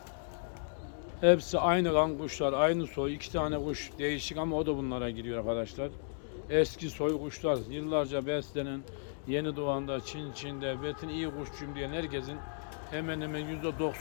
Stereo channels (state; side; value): silent; right; digital silence